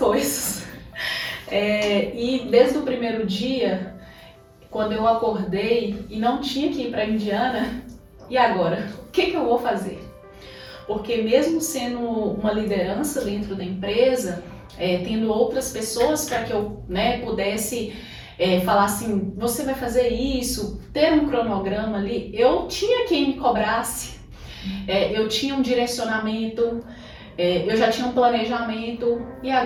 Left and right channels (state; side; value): identical; both; correlation 1.00